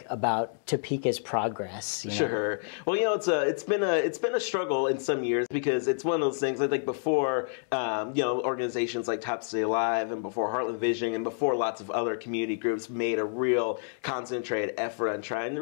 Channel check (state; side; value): silent; right; digital silence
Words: about Topeka's progress? Sure. Well, it's been a struggle in some years because it's one of those things. I think before organizations like Top City Alive and before Heartland Vision and before lots of other community groups made a real concentrated effort on trying to